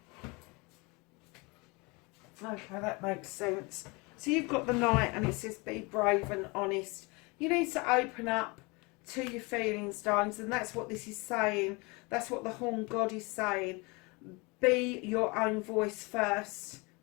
Okay, that makes sense. So you've got the Knight and it says be brave and honest. You need to open up to your feelings, darlings, and that's what this is saying. That's what the Horn God is saying. Be your own voice first.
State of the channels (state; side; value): quieter; right; 27.5 dB